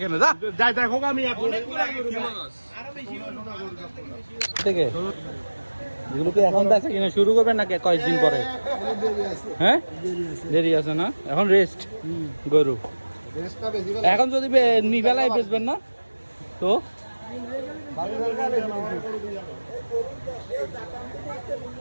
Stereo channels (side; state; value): both; inverted; correlation -1.00